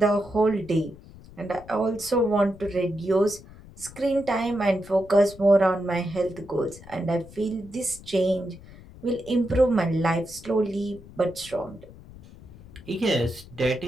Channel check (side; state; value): left; noise; rumble, 20 dB below the sound